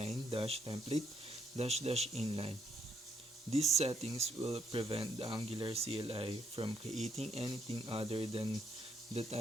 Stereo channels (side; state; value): both; normal; correlation 0.74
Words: -template -inline. These settings will prevent the Angular CLI from creating anything other than the